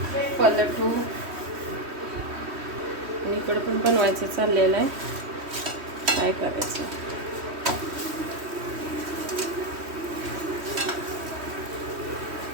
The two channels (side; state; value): left; late; 3.1 ms